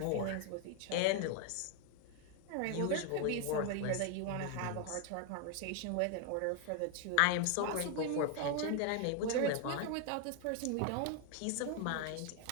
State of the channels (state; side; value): different; both; correlation 0.01